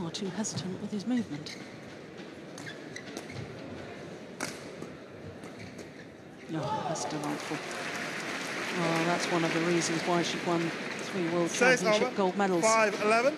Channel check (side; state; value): both; identical; correlation 1.00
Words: too hesitant with his movement. Oh, that's delightful. Oh, that's one of the reasons why she won 3 World Championship gold medals. 5-11.